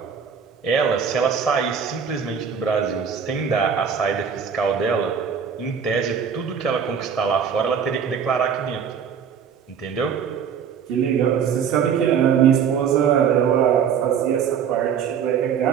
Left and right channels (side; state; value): left; quieter; 7.3 dB